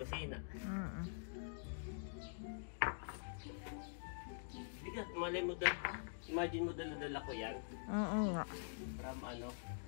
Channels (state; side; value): silent; right; digital silence